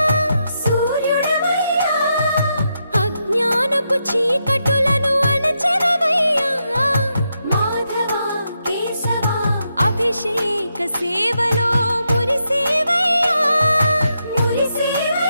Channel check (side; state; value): both; inverted; correlation -0.83